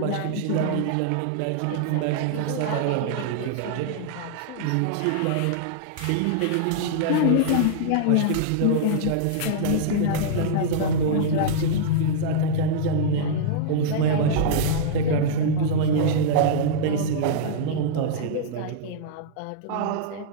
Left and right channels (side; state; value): both; different; correlation -0.02